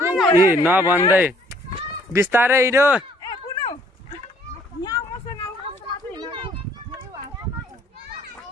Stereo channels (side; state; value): both; normal; correlation 0.62